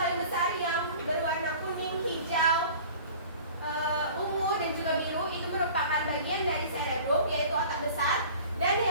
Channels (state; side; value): inverted; both; correlation -0.44